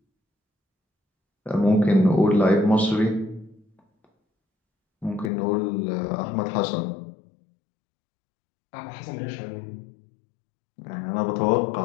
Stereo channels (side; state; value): right; drops out; at 5.3 s